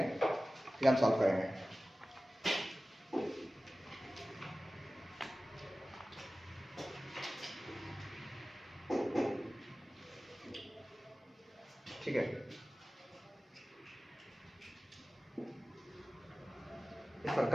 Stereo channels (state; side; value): normal; both; correlation 0.97